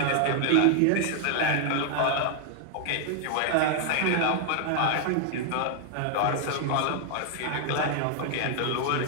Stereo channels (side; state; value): both; different; correlation 0.00